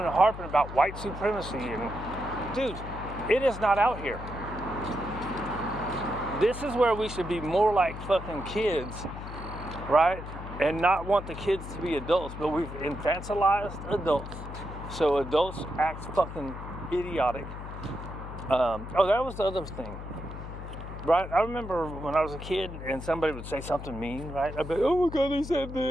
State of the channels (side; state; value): left; noise; hum, 10 dB below the sound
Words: harping about white supremacy. And dude, it is not out here. This is where we should be more like fucking kids, right? And not want the kids to be adults, but we've infantilized adults. So adults act fucking idiotic. That was the other thing, right? I remember when I was a kid and somebody would say something mean, right? I'd be like, oh my God, they said